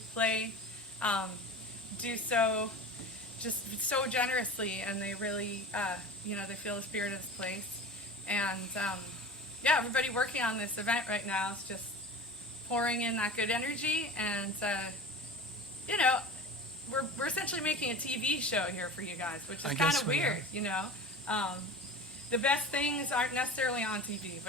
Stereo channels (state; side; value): normal; both; correlation 0.34